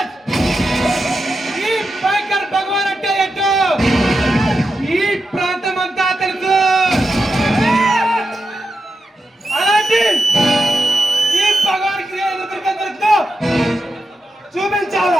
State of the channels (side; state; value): both; normal; correlation 0.88